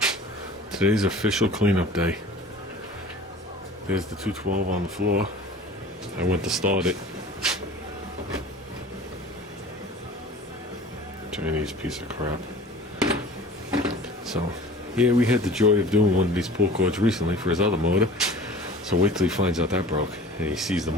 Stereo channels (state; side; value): normal; both; correlation 0.43